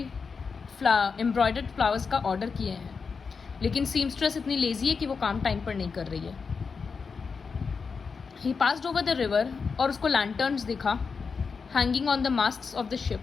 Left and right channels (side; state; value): right; quieter; 5.2 dB